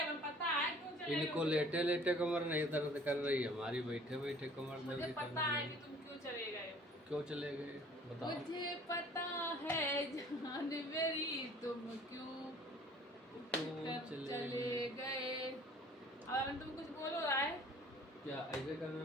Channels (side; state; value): both; normal; correlation 0.52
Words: पता है क्यों चले इनको गए। लेटे लेटे कमर नहीं दर्द कर रही, हमारी बैठे बैठे कमर मुझे दर्द पता करने है कि लगी। तुम क्यों चले गए। क्यों चले गए बताओ। मुझे पता है जान मेरी, तुम क्यों उठकर चले गए। अब तुम कुछ बोलो रहा है, क्या ऐसे करने